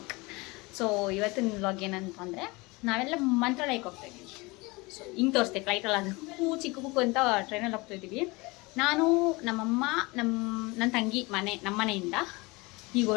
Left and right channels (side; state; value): right; quieter; 24.6 dB